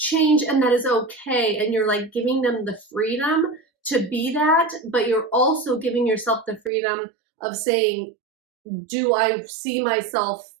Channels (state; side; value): drops out; left; at 6.7 s